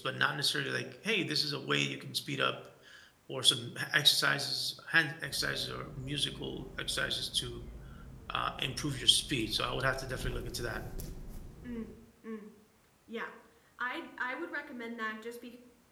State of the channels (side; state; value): both; identical; correlation 1.00